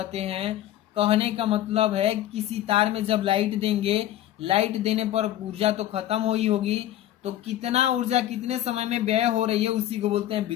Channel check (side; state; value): right; quieter; 13.1 dB